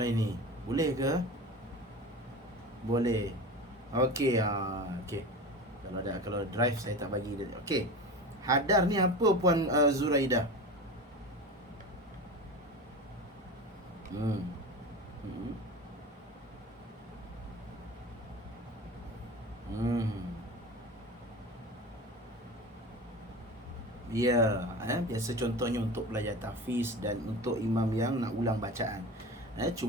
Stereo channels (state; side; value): normal; both; correlation 0.31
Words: Boleh ke? Boleh. Okey, okey. Kalau drive saya tak bagi dia. Okey. Hadar ni apa Puan Zuraidah? Ya, biasa contohnya untuk belajar tahfiz dan untuk imam yang nak ulang bacaan.